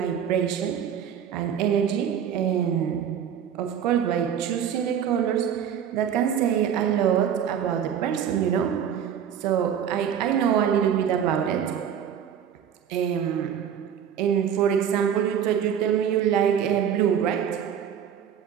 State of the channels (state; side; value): quieter; left; 8.7 dB